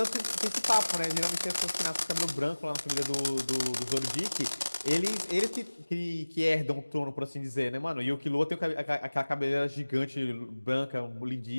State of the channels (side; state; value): both; inverted; correlation -1.00